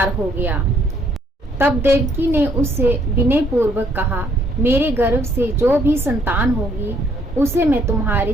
हो गया। तब देवकी ने उससे विनय पूर्वक कहा, मेरे गर्भ से जो भी संतान होगी उसे मैं तुम्हारे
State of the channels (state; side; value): normal; both; correlation 0.67